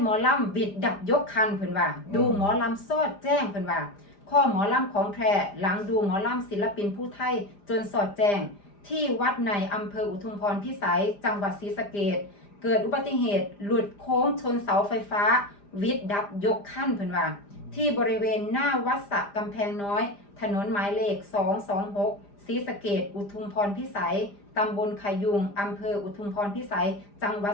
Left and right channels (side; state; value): right; late; 5.0 ms